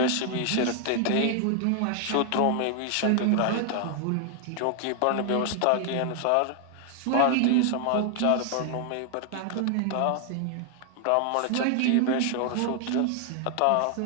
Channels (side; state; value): both; different; correlation 0.00